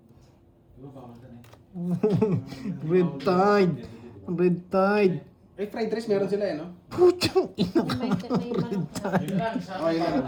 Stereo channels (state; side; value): identical; both; correlation 1.00